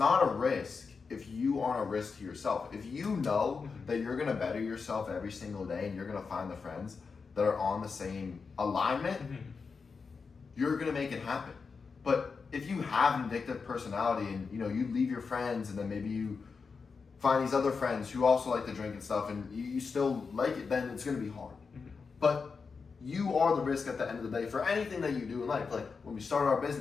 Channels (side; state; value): right; quieter; 5.1 dB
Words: a risk if you aren't a risk to yourself. If you know that you're going to better yourself every single day and you're going to find the friends that are on the same alignment, you're going to make it happen. But if you have an addictive personality and, you know, you leave your friends and then maybe you find these other friends who also like to drink and stuff and you still like it, then it's going to be hard. But you are the risk at the end of the day for anything that you do in life. Like, when we started our